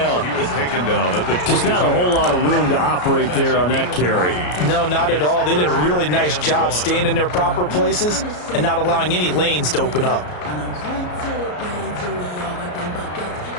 He was taken down at the Just not a whole lot of room to operate there on that carry. No, not at all. They did a really nice job staying in their proper places and not allowing any lanes to open up.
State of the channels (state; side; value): late; right; 33 ms